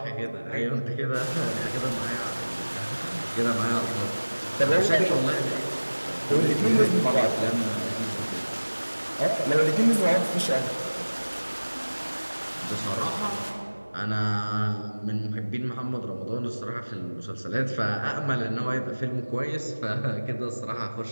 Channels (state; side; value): inverted; both; correlation -1.00